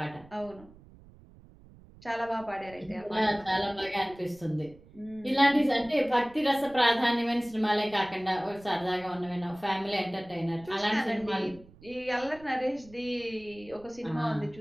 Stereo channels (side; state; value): right; noise; rumble, 23 dB below the sound